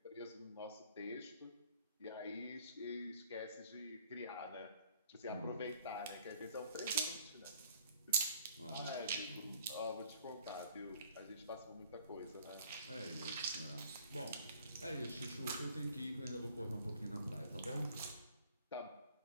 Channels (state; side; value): inverted; both; correlation -0.56